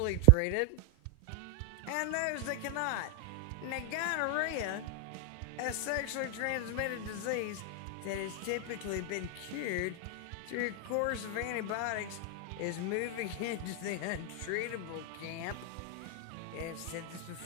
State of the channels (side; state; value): both; different; correlation 0.00